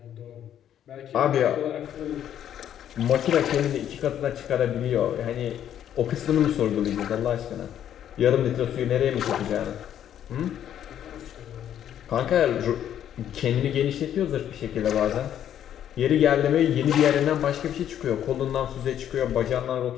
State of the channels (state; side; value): quieter; right; 10.3 dB